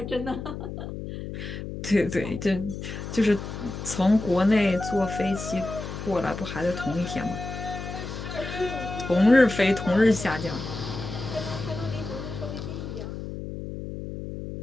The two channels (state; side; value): noise; left; hum, 8 dB below the sound